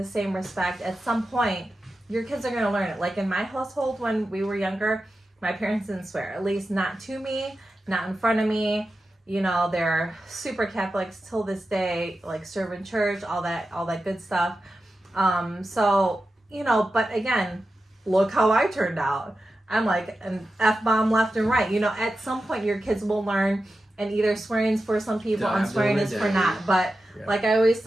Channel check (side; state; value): both; normal; correlation 0.92